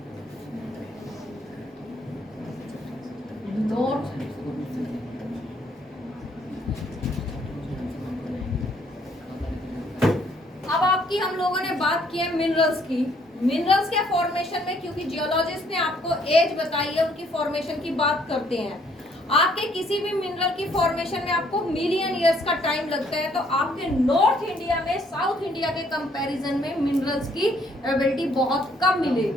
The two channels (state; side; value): normal; both; correlation 0.66